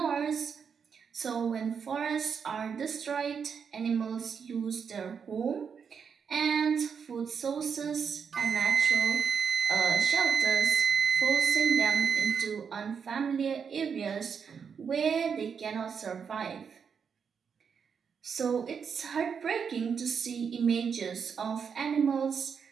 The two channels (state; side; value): quieter; left; 6.6 dB